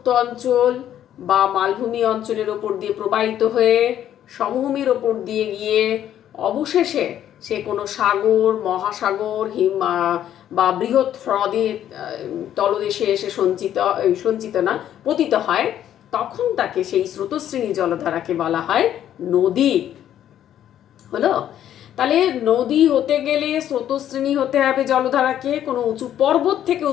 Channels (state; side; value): quieter; right; 10.9 dB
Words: অঞ্চল বা মালভূমি অঞ্চলের ওপর দিয়ে প্রবাহিত হয়ে সমভূমির ওপর দিয়ে গিয়ে অবশেষে সে কোনো সাগর, মহাসাগর, বা বৃহৎ হ্রদের তলদেশে এসে পতিত হয়, তখন তাকে সেই স্রোতশ্রেণী জলধারাকে বলা হয় নদী। হলো? তাহলে নদী হতে গেলে স্রোতশ্রেণী হতে হবে জলধারাকে, কোনো উঁচু পর্বত থেকে